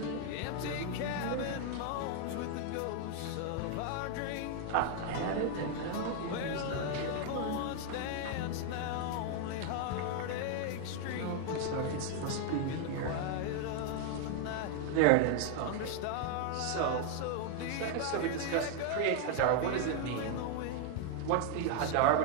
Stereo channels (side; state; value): both; different; correlation 0.00